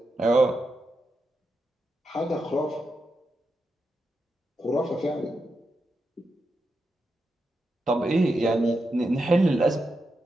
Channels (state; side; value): normal; both; correlation 0.87